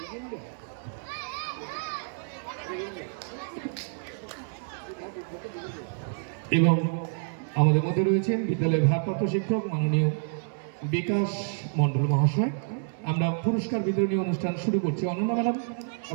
এবং আমাদের মধ্যে রয়েছেন বিদ্যালয়ের ভারপ্রাপ্ত শিক্ষক মাননীয় বিকাশ মণ্ডল মহাশয়। আমরা পুরস্কার বিতরণী অনুষ্ঠান শুরু করছি। অনন্যা ম্যাডাম,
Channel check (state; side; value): silent; left; 59 dB below the other